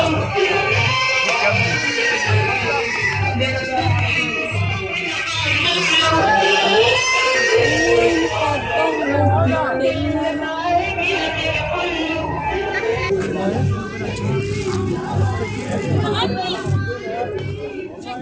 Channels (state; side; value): identical; both; correlation 1.00